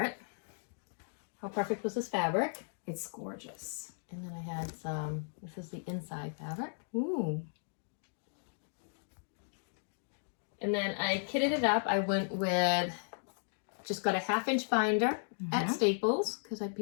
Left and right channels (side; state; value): right; silent; digital silence